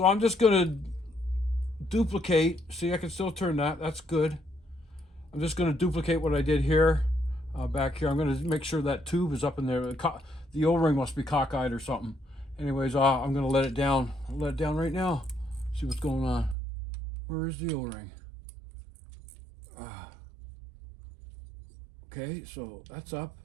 I'm just gonna duplicate. See, I can still turn that. That's good. I'm just gonna duplicate what I did here, back here. I'm gonna make sure that tube is up in there. The O-ring must be cockeyed or something. Anyways, I'm gonna let it down. I'll let it down right now. See what's going on. Where is the O-ring? Okay, so that's up.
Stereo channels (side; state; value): left; drops out; at 16.6 s